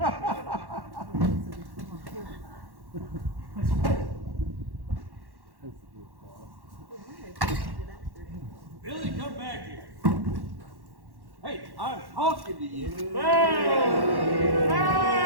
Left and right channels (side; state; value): left; late; 1.1 ms